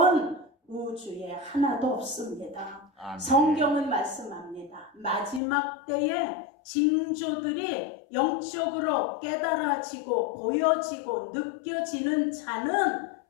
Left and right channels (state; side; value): drops out; right; at 5.4 s